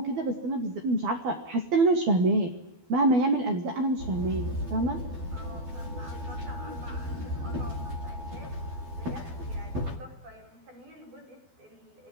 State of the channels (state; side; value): late; left; 12 ms